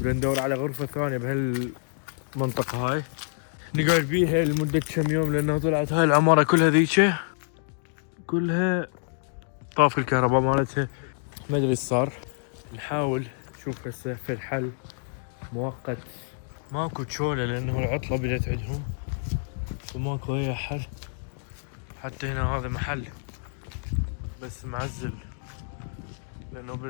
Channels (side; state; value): right; silent; digital silence